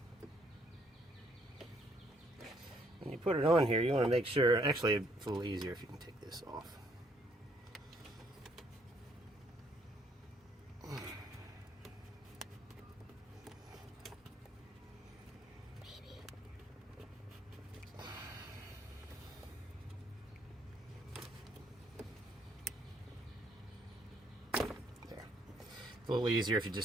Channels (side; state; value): both; normal; correlation 0.67